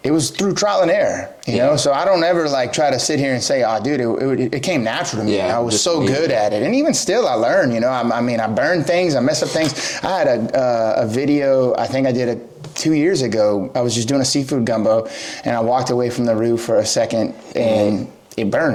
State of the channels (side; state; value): both; identical; correlation 1.00